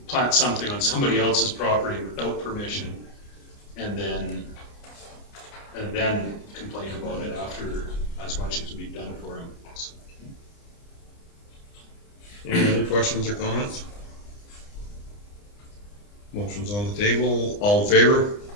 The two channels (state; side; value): late; right; 29 ms